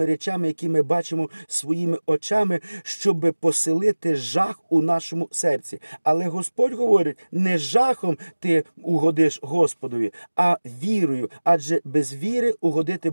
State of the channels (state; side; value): inverted; both; correlation -1.00